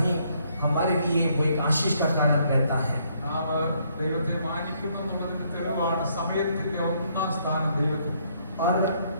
हमारे लिए वो एक आशीष का कारण रहता है. നാം ദൈവത്തെ മാനിക്കുന്നു എന്നുള്ളതിന്റെ തെളിവാണ് സമയത്തിന്റെ ഒന്നാം സ്ഥാനം ദൈവത്തിന്. और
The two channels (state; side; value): inverted; both; correlation -0.70